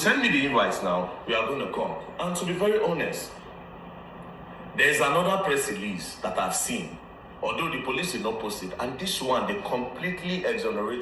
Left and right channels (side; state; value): both; identical; correlation 1.00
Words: me the invites now. We are going to come. And to be very honest, there's another press release that I've seen, although the police did not post it, and this one, they completely